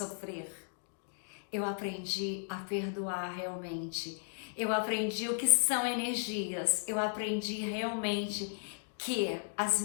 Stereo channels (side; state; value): right; silent; digital silence